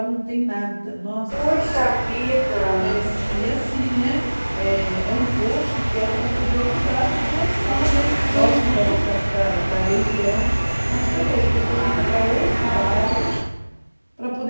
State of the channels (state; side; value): inverted; both; correlation -1.00